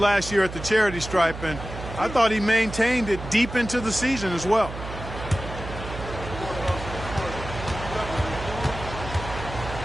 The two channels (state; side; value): noise; right; hum, 10 dB below the sound